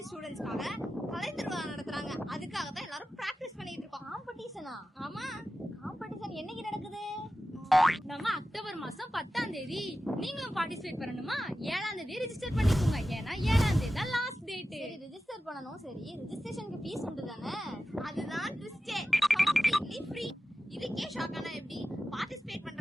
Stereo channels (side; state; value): both; normal; correlation 0.93